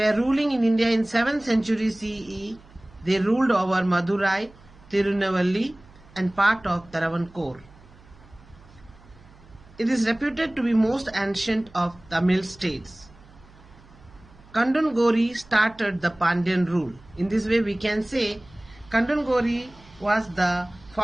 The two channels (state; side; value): noise; right; hum, 25 dB below the sound